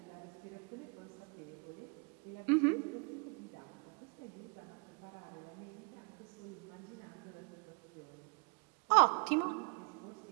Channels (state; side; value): quieter; left; 32.7 dB